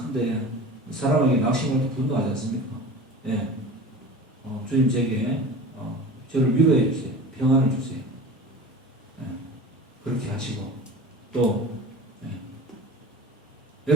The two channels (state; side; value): normal; both; correlation 0.36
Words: 사람에게 낙심할 때 분노하지 않습니까? 예. 주님 제게 저를 위로해 주세요. 평안을 주세요. 예. 그렇게 하시고 또 예.